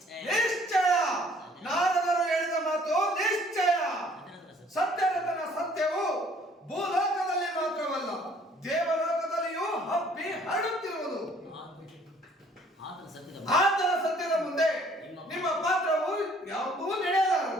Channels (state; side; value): normal; both; correlation 0.59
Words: ನಿಶ್ಚಯ ನಾರದರು ಹೇಳಿದ ಮಾತು ನಿಶ್ಚಯ. ಸತ್ಯರತನ ಸತ್ಯವು ಭೂಲೋಕದಲ್ಲಿ ಮಾತ್ರವಲ್ಲ ದೇವಲೋಕದಲ್ಲಿಯೂ ಹಬ್ಬಿ ಹರಡುತ್ತಿರುವುದು. ಆತನ ಸತ್ಯದ ಮುಂದೆ ನಿಮ್ಮ ಪಾತ್ರವು ಯಾವುದೂ